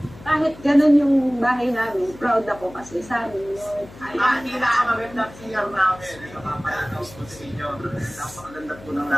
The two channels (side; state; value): left; noise; hum, 19 dB below the sound